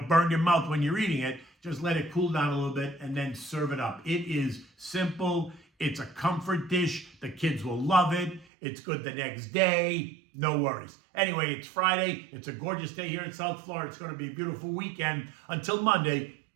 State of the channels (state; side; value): drops out; left; at 8.5 s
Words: burn your mouth when you're eating it. Just let it cool down a little bit and then serve it up. It is simple. It's a comfort dish. The kids will love it. It's good the next day. No worries. Anyway, it's Friday. It's a gorgeous day here in South Florida. It's going to be a beautiful weekend. Until Monday,